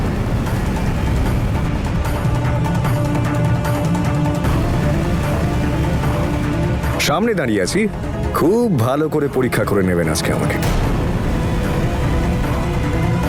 সামনে দাঁড়িয়ে আছি, খুব ভালো করে পরীক্ষা করে নেবেন আজকে আমাকে।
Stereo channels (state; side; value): identical; both; correlation 1.00